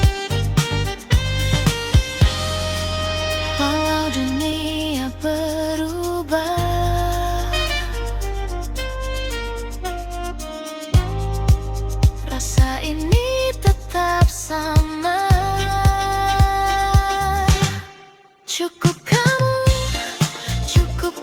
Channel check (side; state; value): both; identical; correlation 1.00